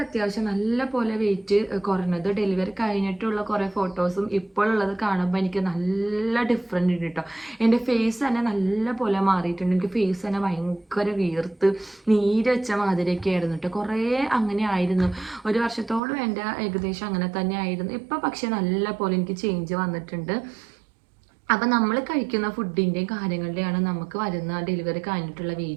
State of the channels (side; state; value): left; drops out; at 16.0 s